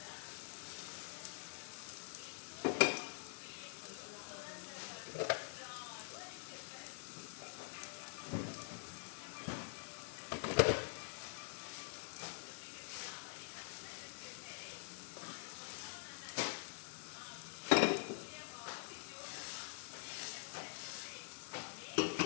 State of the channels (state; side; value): silent; right; digital silence